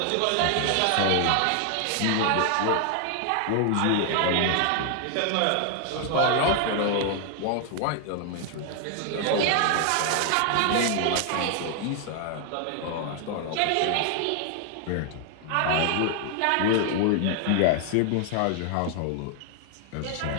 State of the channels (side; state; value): both; different; correlation 0.00